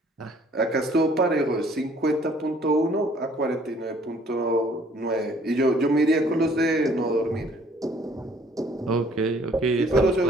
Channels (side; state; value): both; normal; correlation 0.59